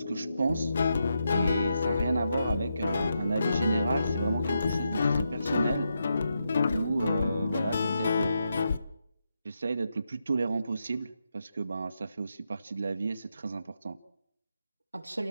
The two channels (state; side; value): inverted; both; correlation -0.84